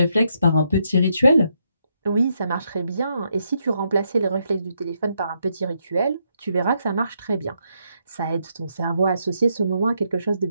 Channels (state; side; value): inverted; both; correlation -0.78